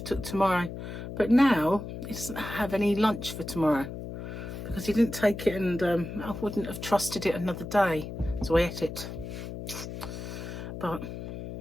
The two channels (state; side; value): noise; left; hum, 8 dB below the sound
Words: took tomorrow. But now he doesn't have any lunch for tomorrow because he didn't take it, and I wouldn't have trusted it another day, so I ate it. But